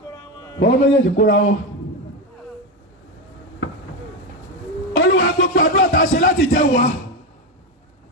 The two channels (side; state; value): both; normal; correlation 0.12